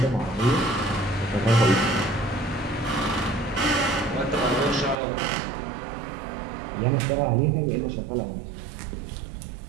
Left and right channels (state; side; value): drops out; left; at 5.0 s